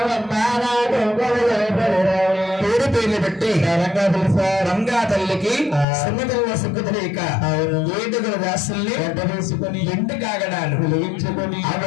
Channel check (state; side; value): drops out; right; at 5.9 s